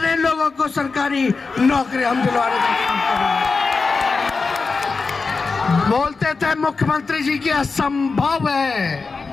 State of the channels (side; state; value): right; quieter; 4.4 dB